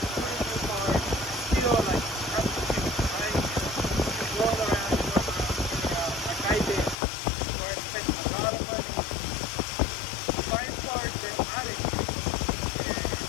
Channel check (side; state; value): right; drops out; at 7.0 s